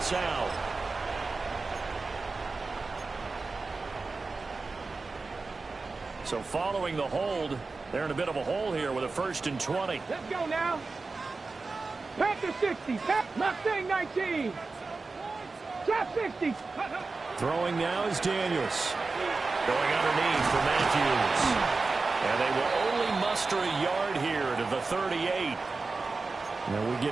out. So following the hold, they're in a bit of a hole here with a 1st and 20. Let's go now. Panther 60. Mustang 19. Trap 60. Throwing now is Daniels. Going underneath for Matthews. And they will only muster a yard here to the 38. Now we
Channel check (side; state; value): left; quieter; 3.9 dB